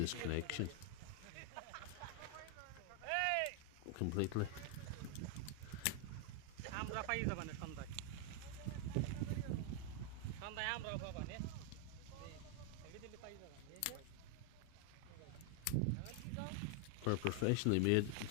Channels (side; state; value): both; different; correlation 0.01